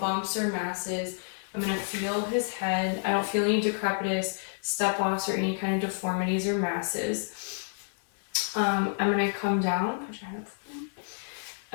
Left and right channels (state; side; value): silent; right; digital silence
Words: or masses. I'm going to feel his head. I don't feel any decrepitous, step-offs, or any kind of deformities or masses. I'm going to come down,